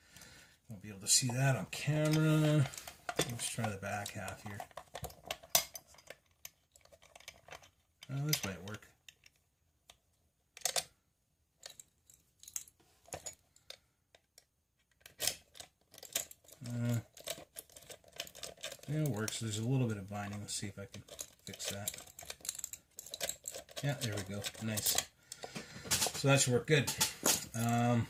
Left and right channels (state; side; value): identical; both; correlation 1.00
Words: Won't be able to see that on camera. Let's try the back half here. Oh, this might work. Yeah, it works. There's a little bit of binding. Let's see if I can fix that. Yeah, there we go. Nice. So that should work good.